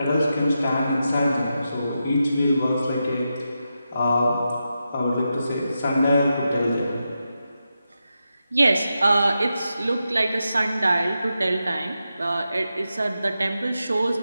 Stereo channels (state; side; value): inverted; both; correlation -0.88